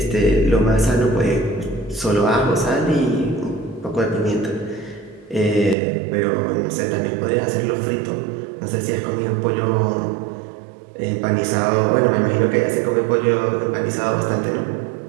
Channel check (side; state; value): left; drops out; at 5.8 s